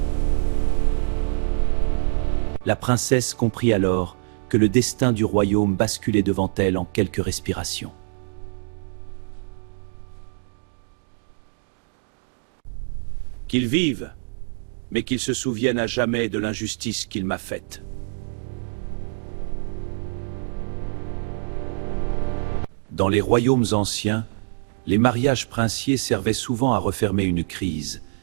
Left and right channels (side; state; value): left; silent; digital silence